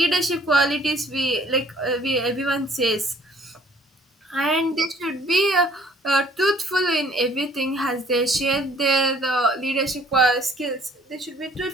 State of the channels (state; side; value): normal; both; correlation 0.57